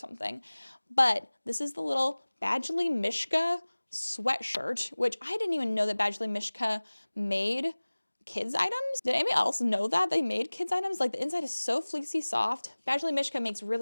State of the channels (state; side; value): inverted; both; correlation -1.00